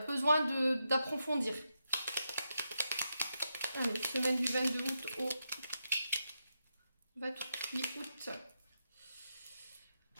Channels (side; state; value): both; inverted; correlation -0.85